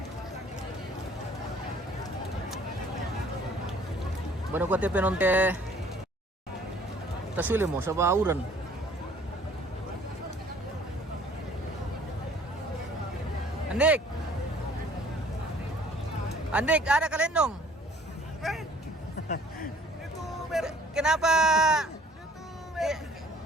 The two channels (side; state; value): both; normal; correlation 0.55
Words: Bueno, kuat penonte tasuli mo sa bauran. Andik, ada kalendong. Kenapa?